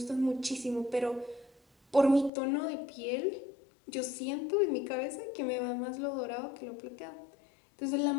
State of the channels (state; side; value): drops out; right; at 2.3 s